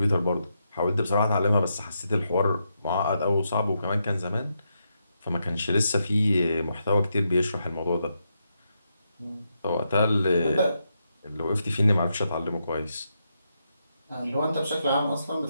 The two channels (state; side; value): inverted; both; correlation -0.82